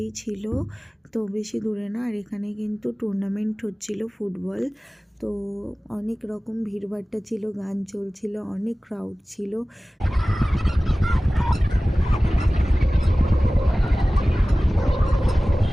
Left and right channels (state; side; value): normal; both; correlation 0.97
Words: ছিল, তো বেশি দূরে না। আর এখানে কিন্তু টুর্নামেন্ট হচ্ছিল ফুটবল। তো অনেক রকম ভিড়ভাট্টা ছিল, গান চলছিল, অনেক ক্রাউড ছিল।